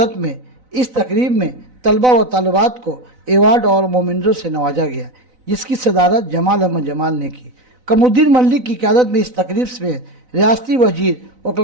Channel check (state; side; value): late; left; 4.0 ms